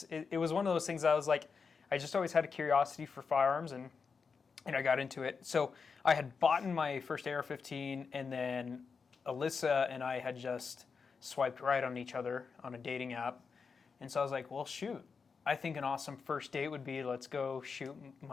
was one of those things I was I just always had a curiosity for firearms, and I got into it. So I had bought my first AR-15, and then Alyssa and I had just swiped right on each other on a dating app. And so I was well, shoot. I think an awesome first date would be, let's go shoot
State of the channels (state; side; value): quieter; right; 5.4 dB